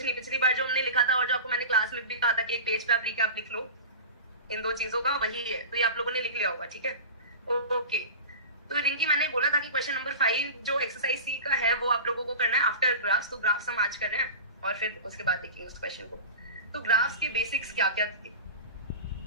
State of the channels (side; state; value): both; inverted; correlation -0.31